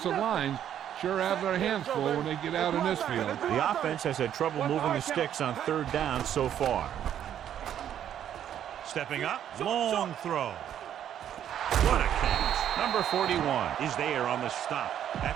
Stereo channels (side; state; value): left; quieter; 10.1 dB